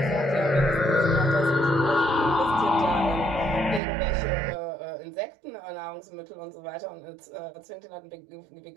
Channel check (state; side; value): drops out; left; at 3.8 s